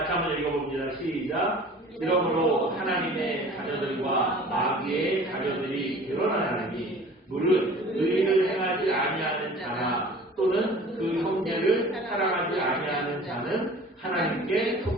한번 읽어봅니다. 시작. 이러므로 하나님의 자녀들과 마귀의 자녀들이 드러나나니 물은 의를 행하지 아니하는 자나 또는 그 형제를 사랑하지 아니하는 자는 하나님께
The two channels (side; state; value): both; normal; correlation 0.45